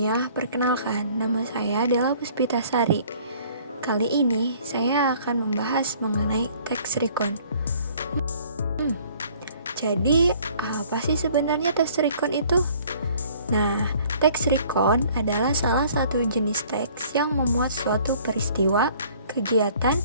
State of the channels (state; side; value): inverted; both; correlation -0.56